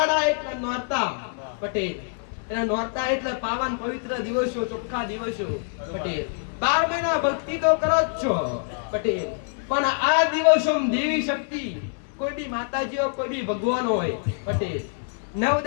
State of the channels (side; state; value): right; silent; 62 dB below the other